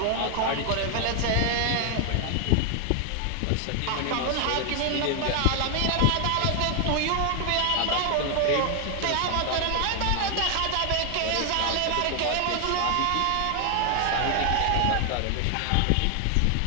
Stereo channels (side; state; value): both; different; correlation 0.00